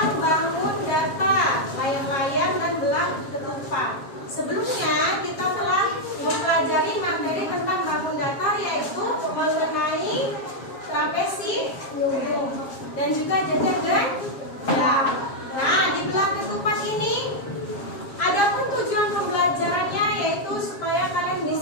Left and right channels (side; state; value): right; late; 7.4 ms